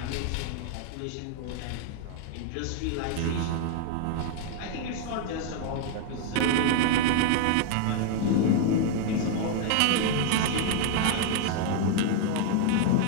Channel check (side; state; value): both; different; correlation 0.00